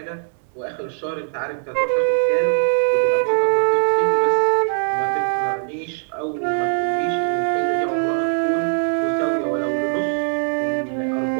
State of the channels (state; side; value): silent; left; digital silence